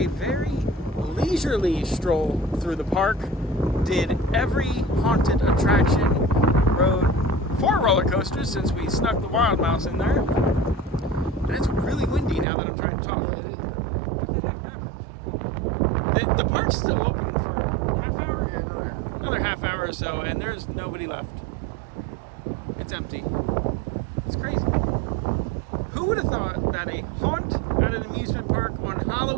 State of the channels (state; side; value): drops out; left; at 12.5 s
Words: very leisurely stroll through the park, did every haunted attraction, rode 4 roller coasters since we snuck the Wild Mouse in there. And it's really windy now that I'm trying to talk. What the heck happened? The park's still open for a half hour? Yeah, Another half hour or so, and there's nobody left. It's empty. It's crazy. Who would have thought that a haunt at an amusement park on